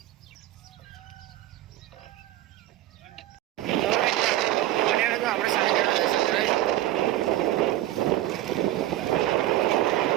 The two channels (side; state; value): left; quieter; 14.5 dB